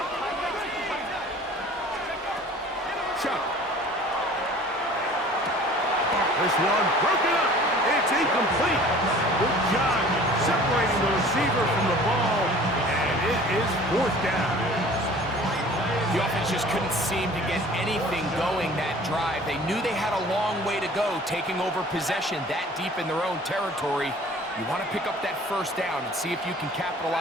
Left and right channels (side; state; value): both; normal; correlation 0.47